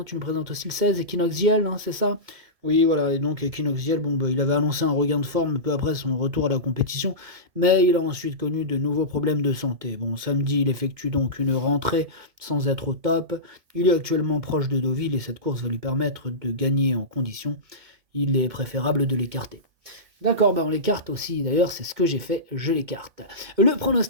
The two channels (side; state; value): left; late; 2.2 ms